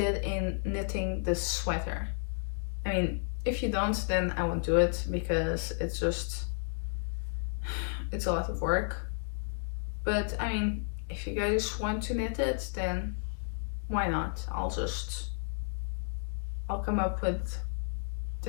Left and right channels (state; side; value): silent; right; digital silence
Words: in knitting this sweater. I mean, if you don't, then I won't do it, because it's a lot of work. But I mean, if you guys want to knit it, then why not? I'll come up with